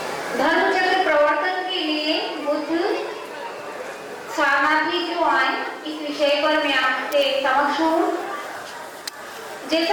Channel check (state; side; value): identical; both; correlation 1.00